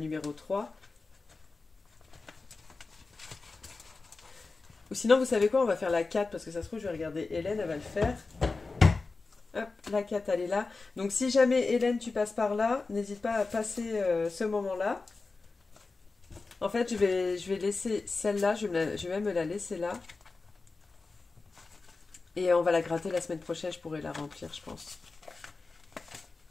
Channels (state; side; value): quieter; right; 3.8 dB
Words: 3. Ou sinon, vous savez quoi? On va faire la 4. Parce que ça se trouve, je vais regarder Hélène, elle va le faire. Hop, la 4, elle est là. Donc si jamais, Hélène, tu passes par là, n'hésite pas à passer ce moment-là. En fait, je vais laisser celle-là. Je vais même me la laisser là. Et on va la gratter la semaine prochaine, je pourrai la remplir, je pense.